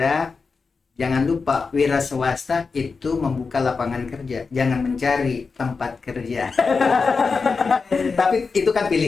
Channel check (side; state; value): right; quieter; 4.7 dB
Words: Jangan lupa wira swasta itu membuka lapangan kerja, jangan mencari tempat kerja. Tapi itu kan